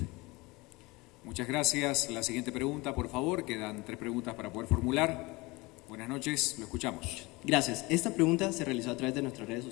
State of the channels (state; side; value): quieter; right; 22.9 dB